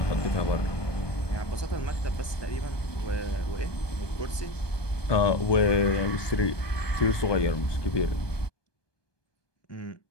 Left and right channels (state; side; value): late; right; 1.2 ms